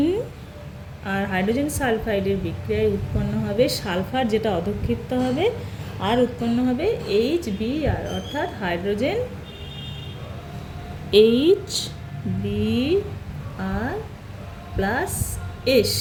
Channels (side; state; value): both; identical; correlation 1.00